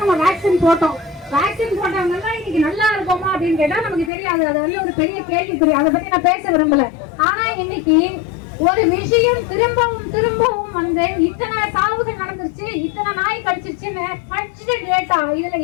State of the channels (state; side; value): drops out; right; at 4.1 s